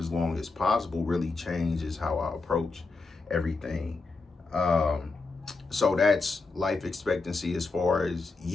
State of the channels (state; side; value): quieter; right; 3.9 dB